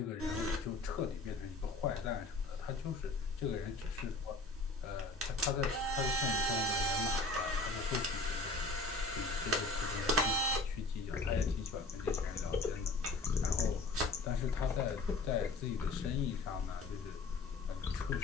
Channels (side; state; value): right; quieter; 3.2 dB